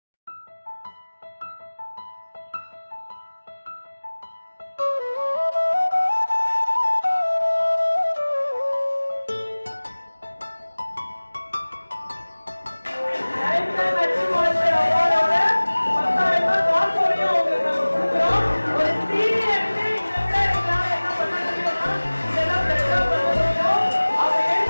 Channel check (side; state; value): both; inverted; correlation -1.00